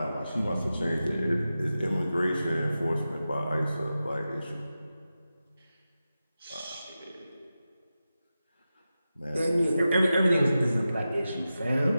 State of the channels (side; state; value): both; inverted; correlation -0.93